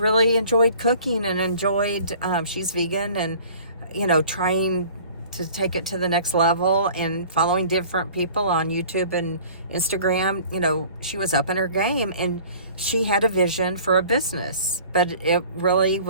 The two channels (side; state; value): both; inverted; correlation -0.48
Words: enjoyed cooking and enjoyed, she's vegan, and, you know, trying to take it to the next level and following different people on YouTube and Instagram. You know, she was up in her game, and she had a vision for a business, but it really